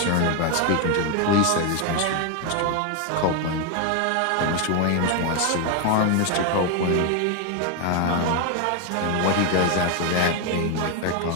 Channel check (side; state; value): both; different; correlation 0.01